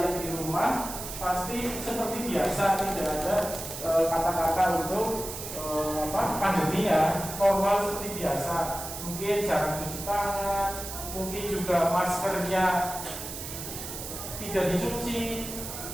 di rumah pasti seperti biasa, tidak ada kata-kata untuk pandemi ya, normal seperti biasa. Mungkin jarang cuci tangan, mungkin juga maskernya tidak dicuci,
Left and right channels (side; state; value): right; noise; hiss, 8 dB below the sound